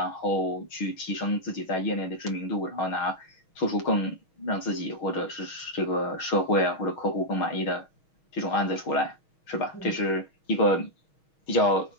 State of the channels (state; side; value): late; right; 6.3 ms